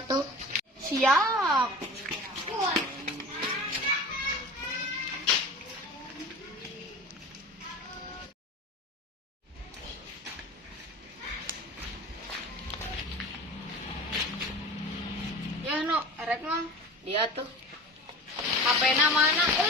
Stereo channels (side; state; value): both; normal; correlation 0.36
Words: Siap. Ya no, erek mah. Dia tuh. HP-na mana?